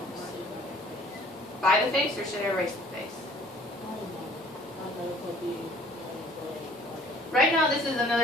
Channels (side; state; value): both; normal; correlation 0.54